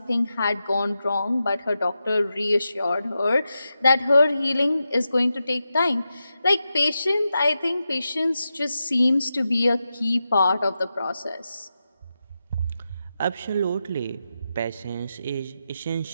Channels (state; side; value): inverted; both; correlation -0.89